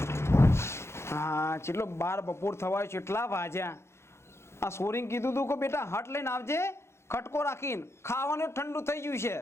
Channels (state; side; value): late; right; 0.13 ms